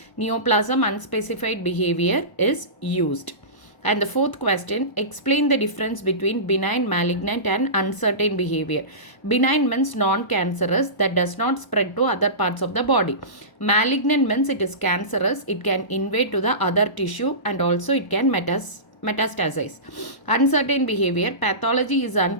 Neoplasm unspecified behavior is used. And the fourth question, explain the difference between benign, malignant and uncertain behavior. Benign means non-cancerous, that does not spread to other parts of the body. Malignant means it is cancerous, it can invade to the other tissue and also it can metastasize. Uncertain behavior, pathology is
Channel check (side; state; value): right; late; 1.0 ms